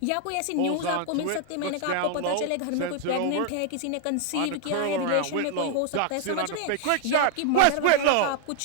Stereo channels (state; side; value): different; both; correlation 0.00